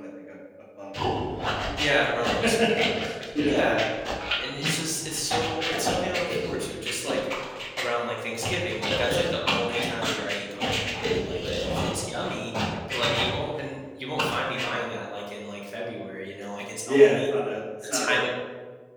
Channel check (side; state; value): both; identical; correlation 1.00